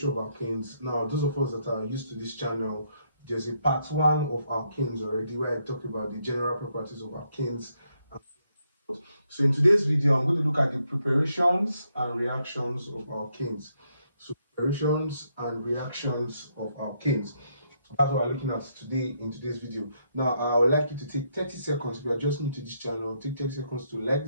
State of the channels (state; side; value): inverted; both; correlation -0.76